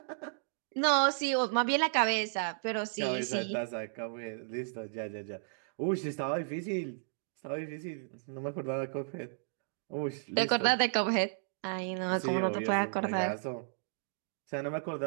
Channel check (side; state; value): left; silent; digital silence